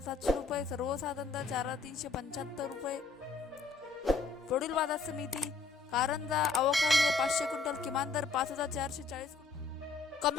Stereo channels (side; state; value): right; quieter; 4.2 dB